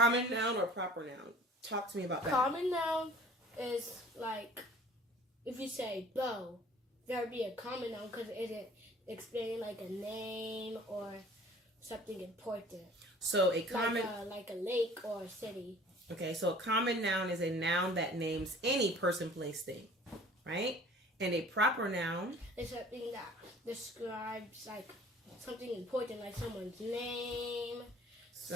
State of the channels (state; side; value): normal; both; correlation 0.49